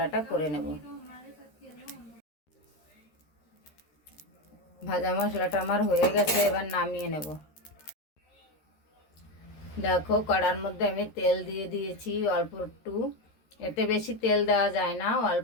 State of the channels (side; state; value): right; late; 13 ms